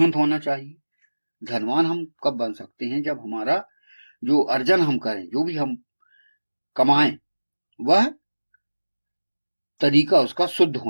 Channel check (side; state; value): both; inverted; correlation -1.00